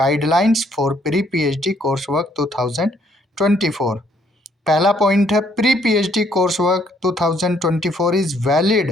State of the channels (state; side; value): normal; both; correlation 0.67